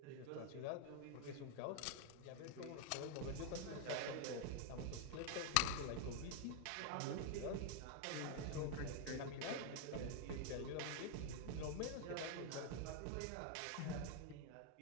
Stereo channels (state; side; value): different; both; correlation 0.00